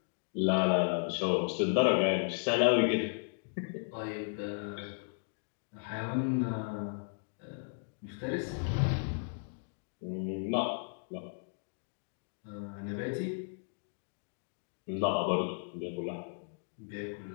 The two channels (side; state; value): right; silent; digital silence